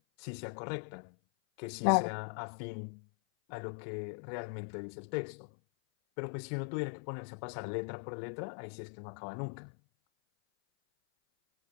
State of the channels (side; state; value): right; silent; 51 dB below the other